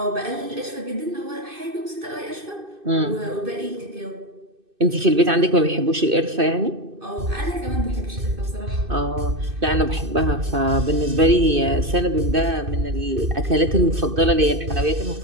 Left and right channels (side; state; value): left; late; 2.6 ms